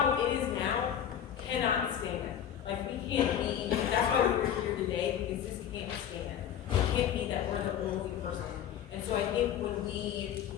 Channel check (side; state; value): right; quieter; 9.6 dB